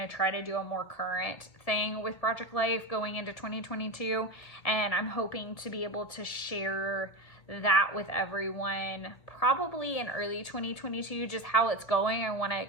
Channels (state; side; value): late; right; 2.0 ms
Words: try to do a more current thing with Project Life going into 2022. And I'm hoping to be able to share that with everyone probably in early 2022, just how it's going. I want